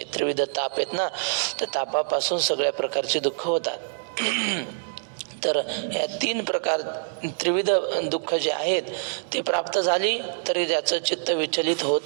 त्रिविध ताप आहेत ना, त्या तापापासून सगळ्या प्रकारचे दुःख होतात. तर या 3 प्रकार त्रिविध दुःख जे आहेत ते प्राप्त झाली तरी त्याचं चित्त विचलित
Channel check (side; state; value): left; silent; digital silence